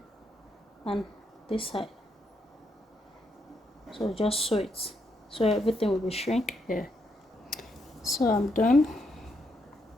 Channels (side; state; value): both; normal; correlation 0.78